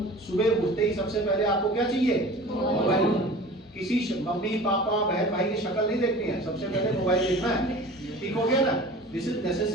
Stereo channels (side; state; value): both; normal; correlation 0.41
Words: सुबह उठते ही सबसे पहले आपको क्या चाहिए, मोबाइल फोन। किसी मम्मी पापा बहन भाई की शक्ल नहीं देखनी है, सबसे पहले मोबाइल देखना है, ठीक हो गया ना। This is